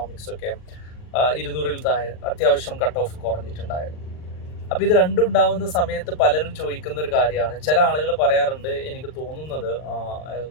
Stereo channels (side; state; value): right; late; 39 ms